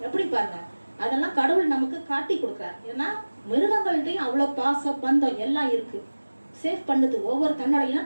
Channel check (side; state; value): both; inverted; correlation -1.00